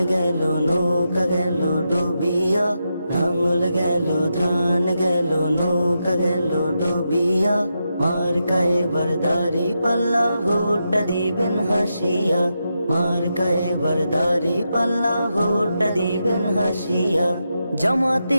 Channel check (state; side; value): inverted; both; correlation -0.86